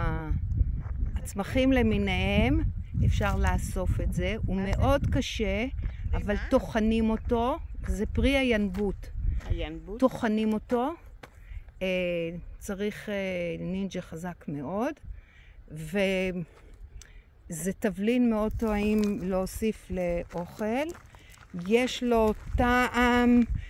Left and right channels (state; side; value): identical; both; correlation 1.00